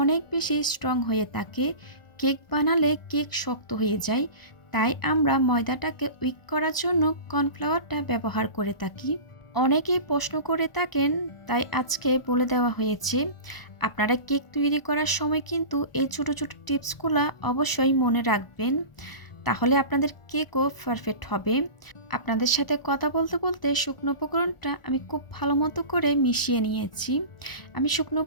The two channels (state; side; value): late; right; 1.0 ms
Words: অনেক বেশি স্ট্রং হয়ে থাকে। কেক বানালে কেক শক্ত হয়ে যায়, তাই আমরা ময়দাটাকে উইক করার জন্য কর্নফ্লাওয়ারটা ব্যবহার করে থাকি। অনেকেই প্রশ্ন করে থাকেন, তাই আজকে বলে দেওয়া হয়েছে। আপনারা কেক তৈরি করার সময় কিন্তু এই ছোটো ছোটো টিপসগুলো অবশ্যই মনে রাখবেন, তাহলে আপনাদের কেকও পারফেক্ট হবে। আপনাদের সাথে কথা বলতে বলতে শুকনো উপকরণটা আমি খুব ভালো মতো করে মিশিয়ে নিয়েছি। আমি শুকনো